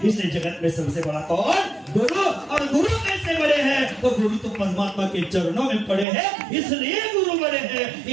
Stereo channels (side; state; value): left; drops out; at 6.1 s